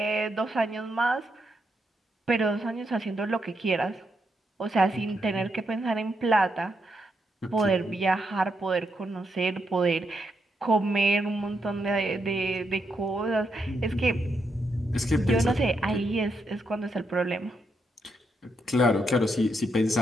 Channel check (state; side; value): normal; both; correlation 0.81